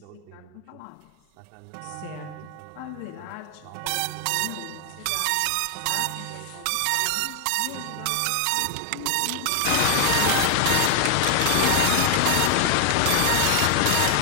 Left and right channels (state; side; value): different; both; correlation 0.00